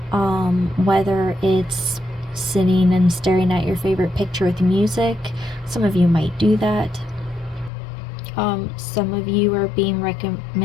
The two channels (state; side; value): drops out; right; at 7.7 s